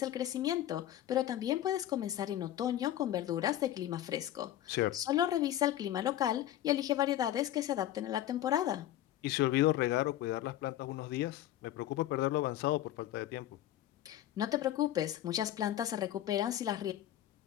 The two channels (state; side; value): quieter; right; 13.0 dB